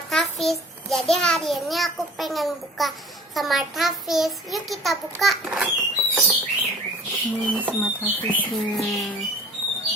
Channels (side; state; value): both; normal; correlation 0.46